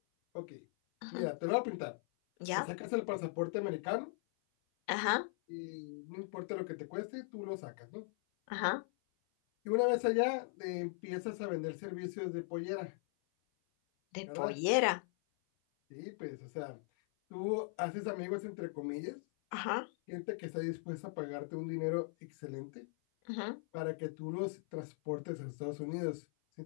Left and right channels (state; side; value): silent; right; 51 dB below the other